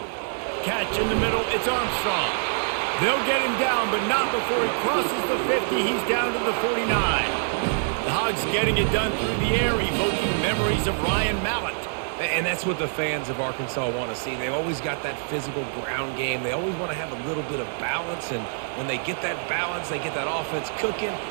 Catch in the middle, it's Armstrong. They'll get him down, but not before he crosses the 50. He's down to the 49. The Hogs getting it done through the air, evoking memories of Ryan Mallett. And that's what the fans of Arkansas want to see. They've always got that physical ground game. They always want to have a little bit of balance, and when they get that balance, they get that offense cooking,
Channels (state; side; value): silent; left; 61 dB below the other